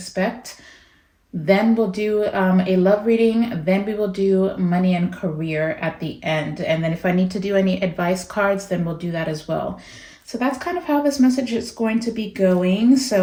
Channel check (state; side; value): identical; both; correlation 1.00